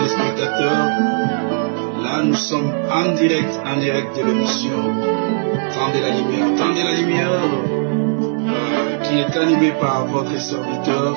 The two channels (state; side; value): silent; left; digital silence